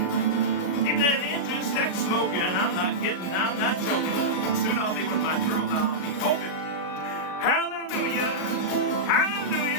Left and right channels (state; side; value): late; right; 38 ms